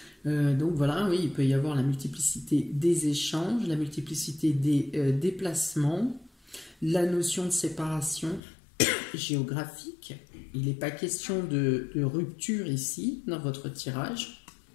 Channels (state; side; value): drops out; right; at 8.4 s